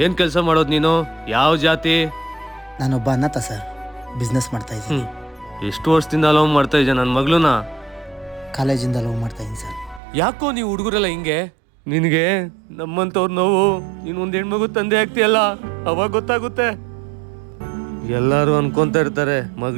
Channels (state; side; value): drops out; left; at 10.0 s